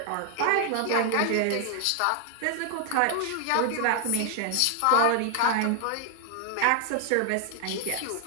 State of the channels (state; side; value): different; both; correlation 0.00